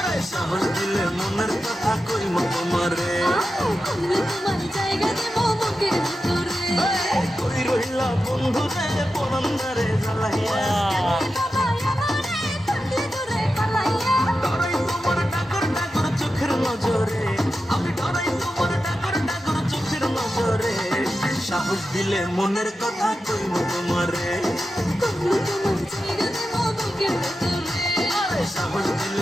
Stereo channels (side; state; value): both; normal; correlation 0.91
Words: সাহস দিলে মনের কথা কইব তোমারে। আমরা তোমায় জায়গা দেব বুকের ভিতরে। কই রইলা বন্ধু রে পরন্দারে জ্বালাইয়া। বাবা আমারে থাকলে দূরে পালাইয়া। ডরাই তোমার ডাকর ডাকর চোখের নজরে। আমি ডরাই তোমার ডাকর ডাকর চোখের নজরে। সাহস দিলে মনের কথা কইব তোমারে। আমরা তোমায় জায়গা দেব বুকের ভিতরে। সাহস